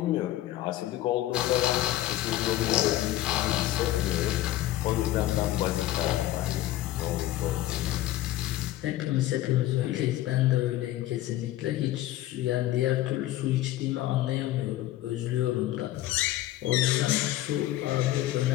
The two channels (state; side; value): quieter; right; 14.8 dB